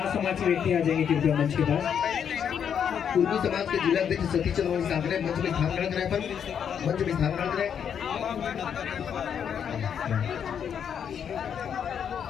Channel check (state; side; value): quieter; right; 8.0 dB